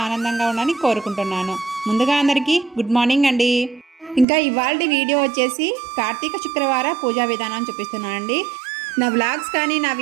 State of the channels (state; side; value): drops out; left; at 4.2 s